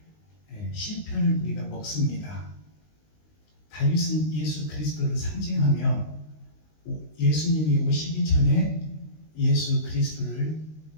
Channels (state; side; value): late; right; 19 ms